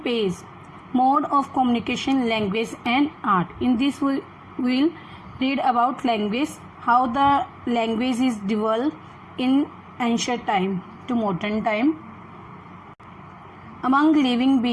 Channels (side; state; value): both; identical; correlation 1.00